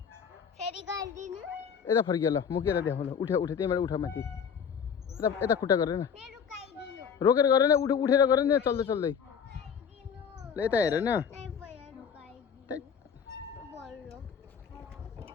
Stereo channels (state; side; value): quieter; right; 7.1 dB